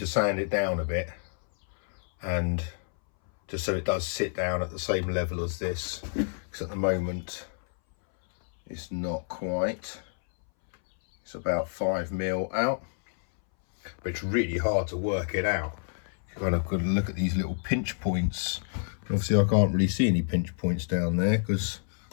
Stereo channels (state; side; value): silent; right; 59 dB below the other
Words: sand it down a bit, and just so it does sit down at the same level as this, because at the moment it's not quite. It's about 5mm out, but it's really hard to work it out. You kind of got to look at these little pinch points. Obviously I can't really see any pinch points down there because